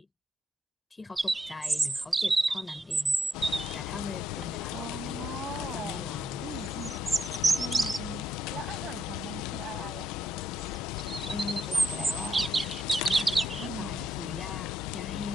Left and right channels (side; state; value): both; normal; correlation 0.77